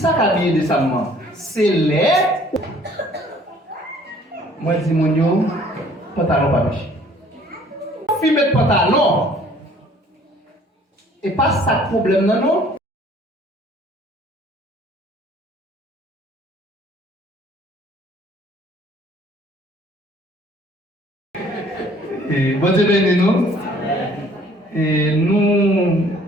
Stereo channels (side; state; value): both; normal; correlation 0.56